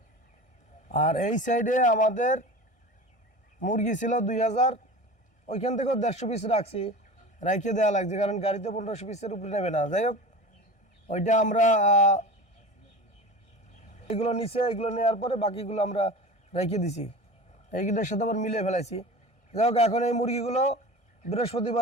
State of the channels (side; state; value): right; late; 1.6 ms